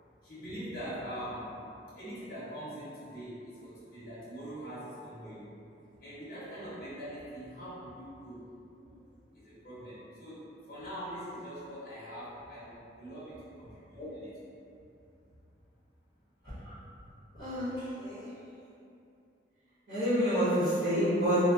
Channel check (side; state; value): both; normal; correlation 0.41